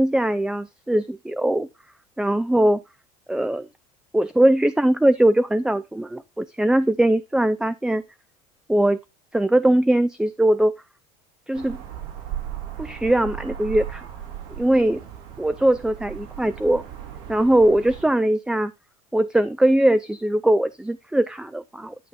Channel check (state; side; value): normal; both; correlation 0.96